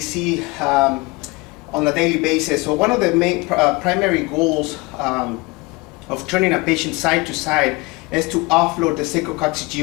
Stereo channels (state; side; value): quieter; right; 25.0 dB